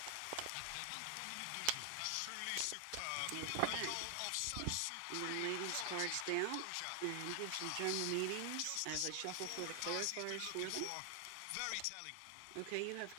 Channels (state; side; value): different; both; correlation 0.00